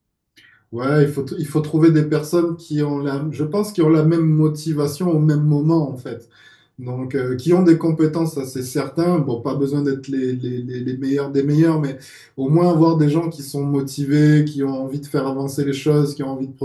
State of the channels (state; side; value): identical; both; correlation 1.00